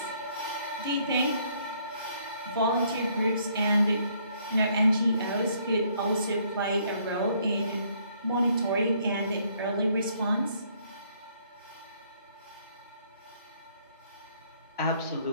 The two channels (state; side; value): inverted; both; correlation -0.66